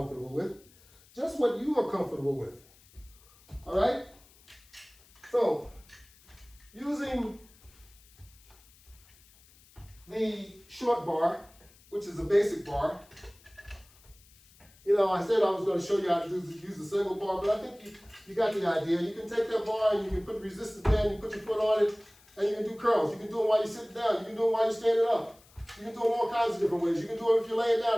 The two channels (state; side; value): noise; left; hiss, 27 dB below the sound